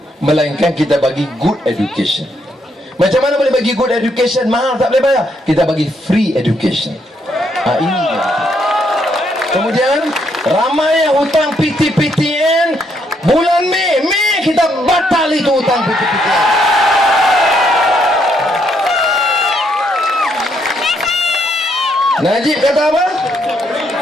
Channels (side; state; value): both; normal; correlation 0.74